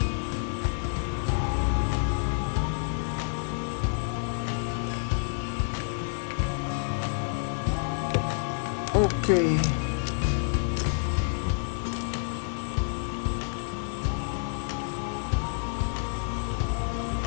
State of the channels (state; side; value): silent; right; 59 dB below the other